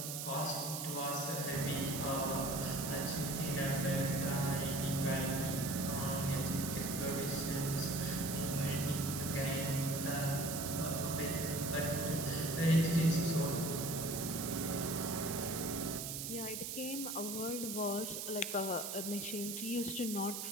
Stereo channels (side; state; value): right; noise; hiss, 4 dB below the sound